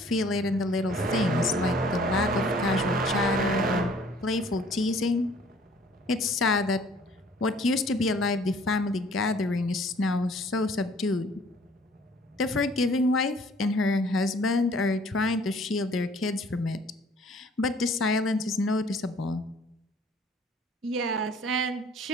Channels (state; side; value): normal; both; correlation 0.56